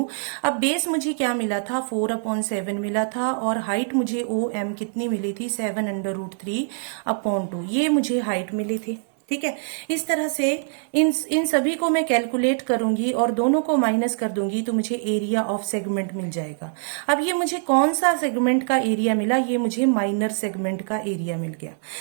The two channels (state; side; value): silent; left; digital silence